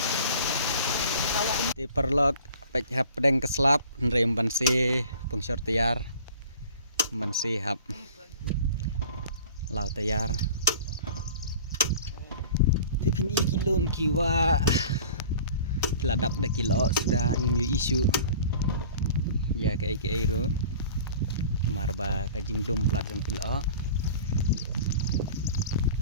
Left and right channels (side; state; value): both; inverted; correlation -0.44